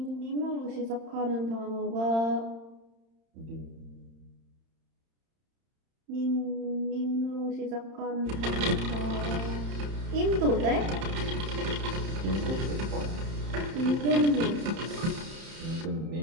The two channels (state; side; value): late; left; 31 ms